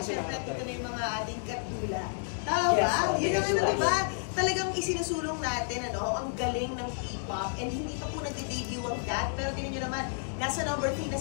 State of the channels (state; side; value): silent; right; digital silence